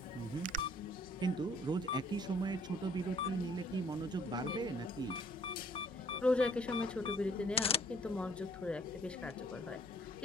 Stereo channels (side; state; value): right; noise; hum, 24 dB below the sound